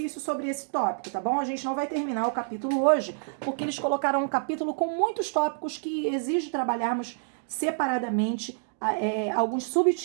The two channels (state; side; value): silent; left; digital silence